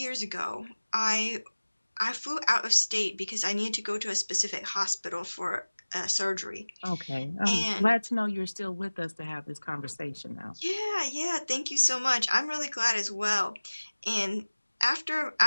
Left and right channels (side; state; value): both; inverted; correlation -1.00